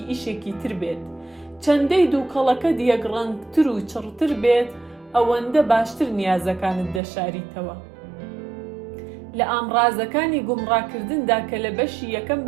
ئیشێکی تر بێت. چەندەی دووکەڵەکە دیەگڕەنگتر و چڕتر بێت، ئەوەندە باشتر نیازەکانت دەشاریتەوە. لە ئامڕازەکانی گومڕاکردندا کە لە بەشی یەکەم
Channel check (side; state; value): left; drops out; at 7.0 s